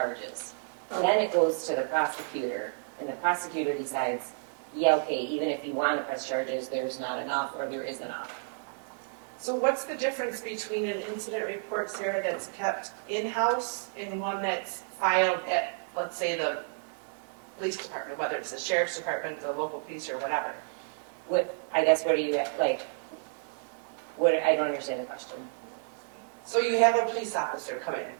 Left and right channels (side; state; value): left; silent; digital silence